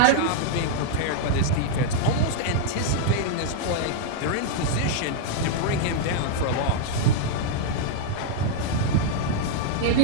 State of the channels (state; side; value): different; both; correlation -0.01